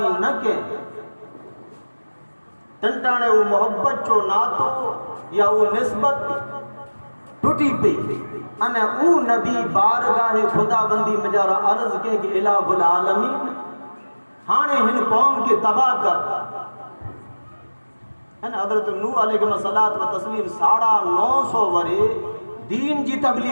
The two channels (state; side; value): inverted; both; correlation -1.00